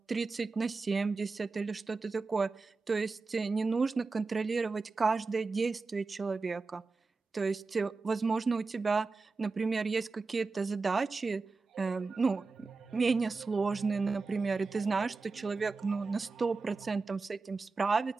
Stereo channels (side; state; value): left; quieter; 4.1 dB